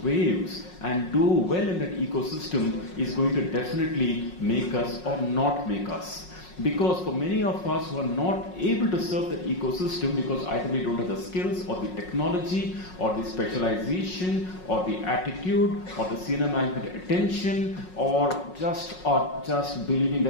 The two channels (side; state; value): right; late; 5.5 ms